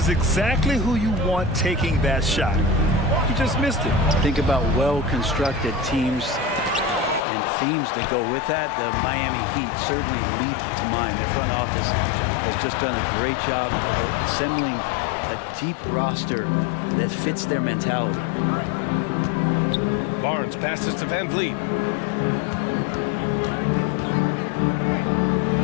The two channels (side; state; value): right; drops out; at 7.2 s